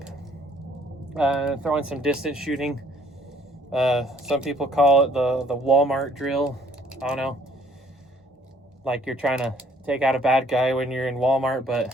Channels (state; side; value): normal; both; correlation 0.61